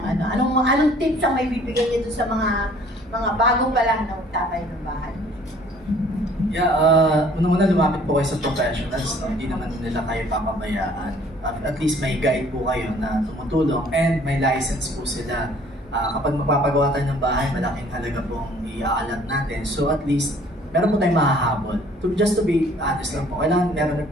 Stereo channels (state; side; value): normal; both; correlation 0.56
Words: ano. Anong tips ang may bibigay niyo sa mga bago pa lang na magtatayo ng bahay? Yeah, unang-una lumapit po kayo sa professionals. No? Hindi naman nila kayo papabayaan. At least may guide po kayo na tumutulong and may license po sila. Kapag magpapagawa tayo ng bahay, malaking halaga pong iaalat natin. So at least, meron po tayong mahahabol. Just to be honest lang po, kailangan meron rin